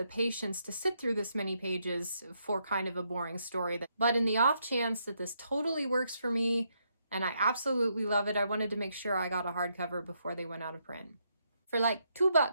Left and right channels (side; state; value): both; inverted; correlation -0.77